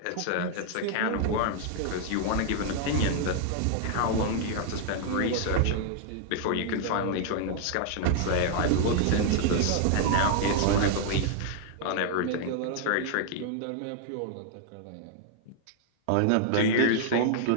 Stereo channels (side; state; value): both; different; correlation 0.00